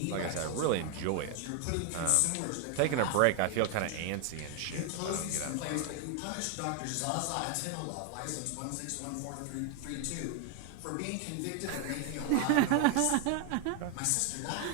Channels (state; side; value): different; both; correlation 0.00